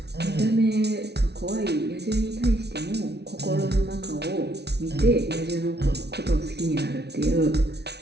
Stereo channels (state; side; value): late; left; 0.49 ms